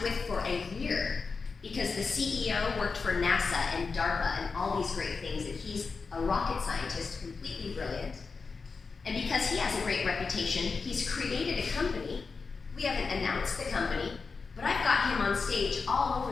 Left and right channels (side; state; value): right; quieter; 4.7 dB